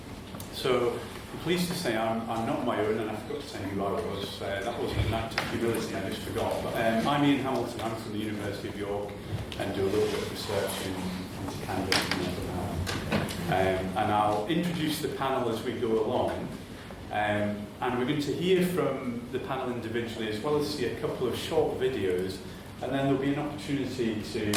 So I'm pleased to say I'm not my own, and I forgot to say who I was. That wasn't an act of humility, I just forgot. But I'm Ian Hamilton, I'm from the University of York, and do a little bit of research into cannabis and mental health. And I'll introduce the panel as we go along. And we're going to hear from the panel individually, as well as see a couple of short videos. And then there'll be an opportunity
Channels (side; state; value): both; identical; correlation 1.00